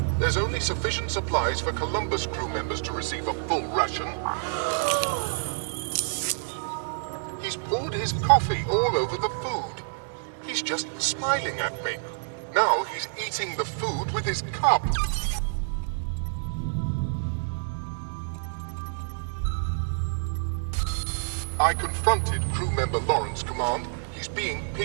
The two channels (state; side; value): silent; left; digital silence